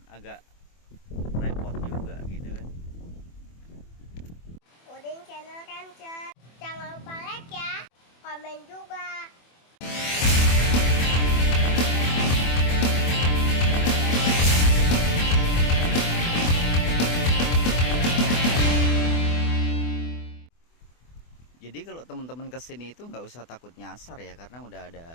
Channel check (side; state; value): right; late; 24 ms